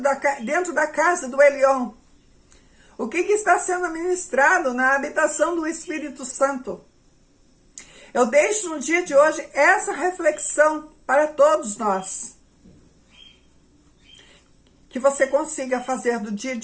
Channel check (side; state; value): both; identical; correlation 1.00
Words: dentro da casa do Elyon? O que está sendo ministrado na habitação do Espírito Santo? Eu deixo no dia de hoje essa reflexão para todos nós. Que você consiga fazer do dia